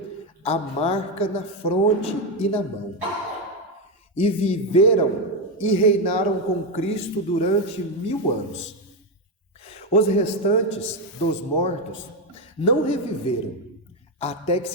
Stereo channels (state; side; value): normal; both; correlation 0.08